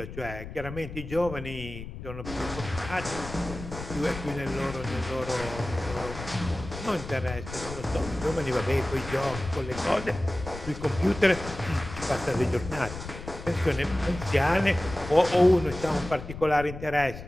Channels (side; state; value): left; noise; rumble, 11 dB below the sound